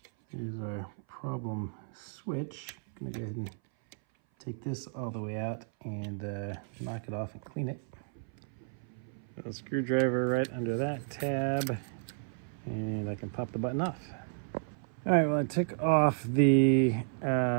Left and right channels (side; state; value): left; silent; 56 dB below the other